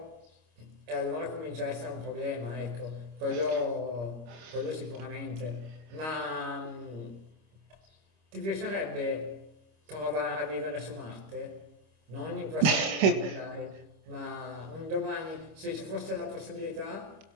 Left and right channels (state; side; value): late; left; 26 ms